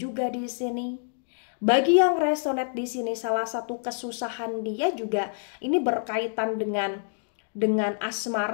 di sini. Bagi yang resonate di sini, salah satu kesusahan dia juga ini berkaitan dengan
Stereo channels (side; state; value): right; silent; digital silence